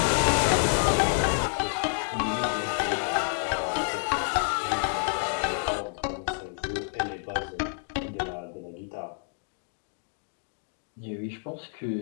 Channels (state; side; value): silent; right; 58 dB below the other